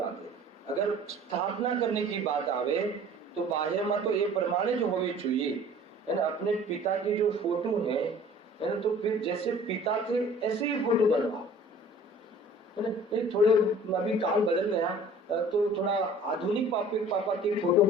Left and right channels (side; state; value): both; normal; correlation 0.48